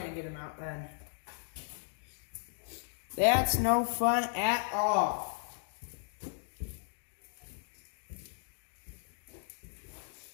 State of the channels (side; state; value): right; silent; digital silence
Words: get them out then. That's no fun at all.